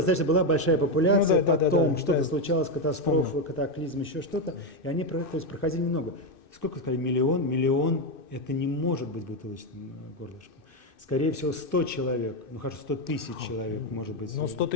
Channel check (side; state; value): right; late; 2.6 ms